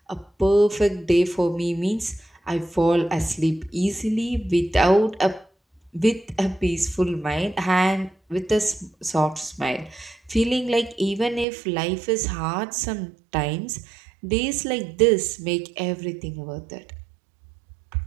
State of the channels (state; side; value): drops out; left; at 11.5 s